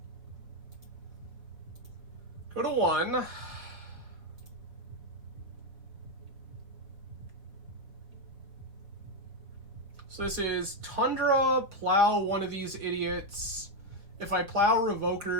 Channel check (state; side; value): late; left; 4.1 ms